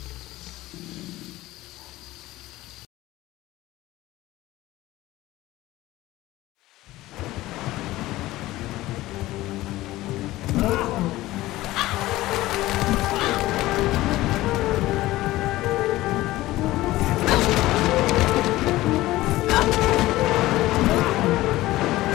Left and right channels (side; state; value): right; quieter; 17.2 dB